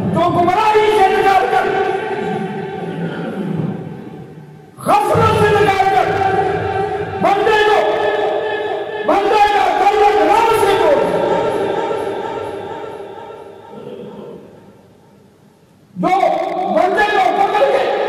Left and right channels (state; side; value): identical; both; correlation 1.00